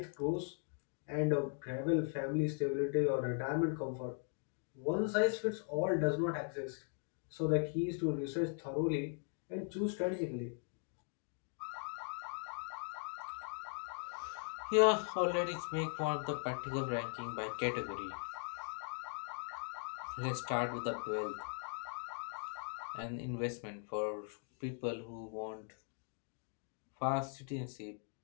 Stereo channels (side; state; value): right; silent; 51 dB below the other